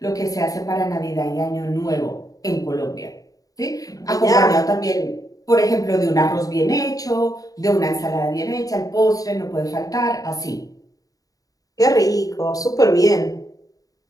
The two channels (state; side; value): late; right; 0.17 ms